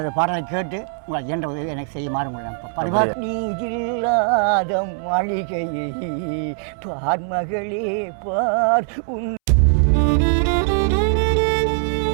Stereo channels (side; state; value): left; silent; 65 dB below the other